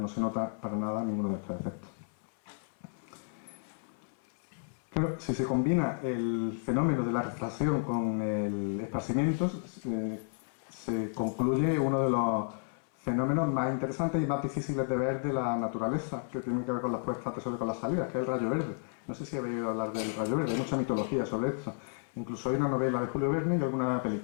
se nota para nada ninguno de estos efectos. Claro, si se combina el fenómeno de la refracción con el esparcimiento, se concluye uno de los fenómenos más interesantes y más difíciles de ver de la naturaleza, que tienen que ver con las puestas de sol y con las salidas, que es el rayo verde. No sé si habéis oído hablar del rayo verde, hay mucha mitología sobre esto. Incluso hay una novela de Julio Verne y alguna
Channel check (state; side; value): silent; right; 56 dB below the other